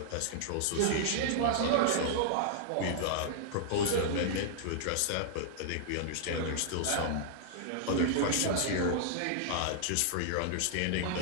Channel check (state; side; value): different; both; correlation -0.01